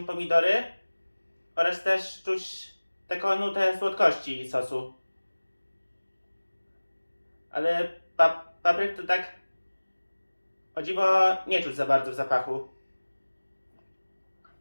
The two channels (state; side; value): inverted; both; correlation -1.00